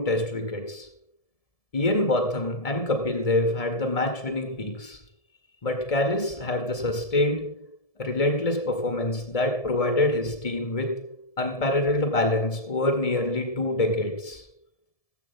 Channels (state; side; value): late; right; 1.7 ms